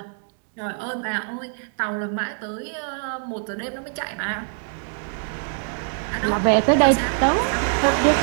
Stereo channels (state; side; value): silent; left; digital silence